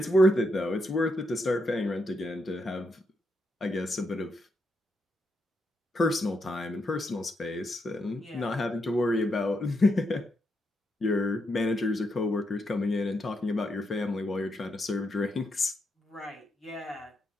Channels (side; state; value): both; normal; correlation 0.81